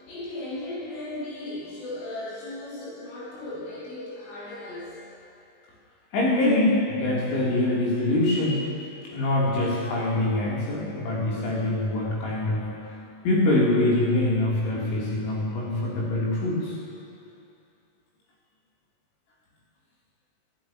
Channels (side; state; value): right; late; 20 ms